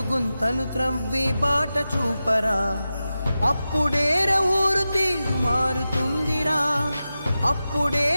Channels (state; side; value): inverted; both; correlation -0.93